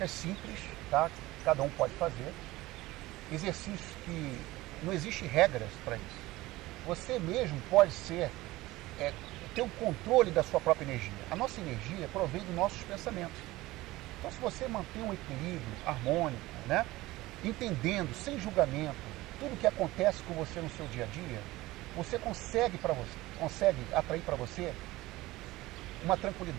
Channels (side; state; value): left; quieter; 18.7 dB